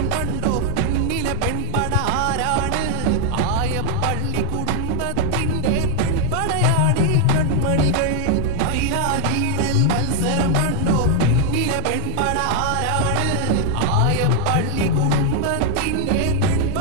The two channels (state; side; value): different; both; correlation 0.00